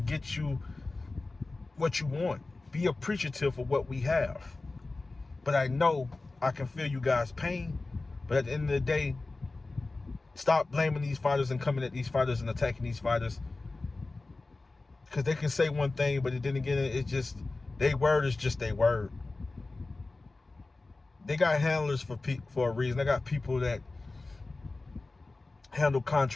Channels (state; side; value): quieter; right; 3.3 dB